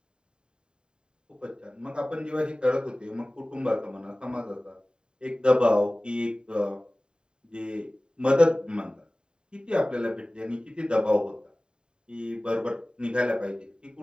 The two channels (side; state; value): left; late; 0.049 ms